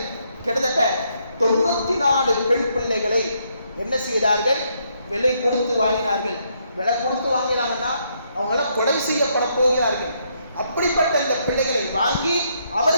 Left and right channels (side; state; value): both; inverted; correlation -0.74